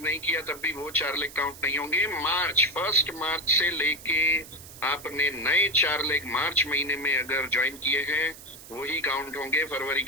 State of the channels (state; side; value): noise; right; hiss, 17 dB below the sound